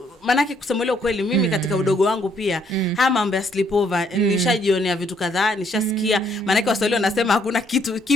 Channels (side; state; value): both; normal; correlation 0.69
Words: manake kusema leo kweli mimi katika udogo wangu pia haya mambo ya sleepover nishajionea vitu kadhaa, nishasikia. Manake Waswahili wanasema hakuna kitu